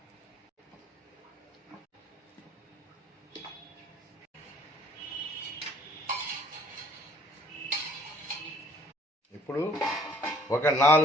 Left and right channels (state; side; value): normal; both; correlation 0.58